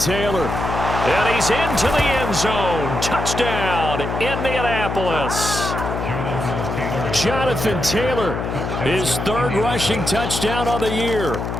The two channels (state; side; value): noise; left; hum, 4 dB below the sound